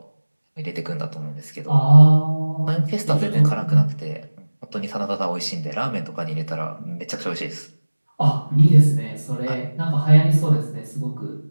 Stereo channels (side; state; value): both; inverted; correlation -1.00